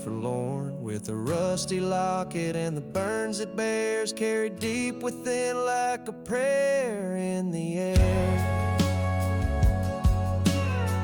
with the rusty locket and the burns it bears, carried deep within like a prayer in the air.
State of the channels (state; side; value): identical; both; correlation 1.00